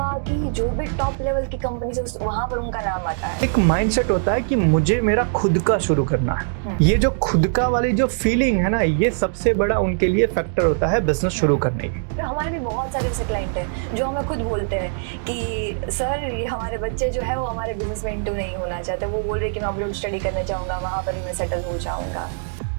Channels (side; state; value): left; silent; digital silence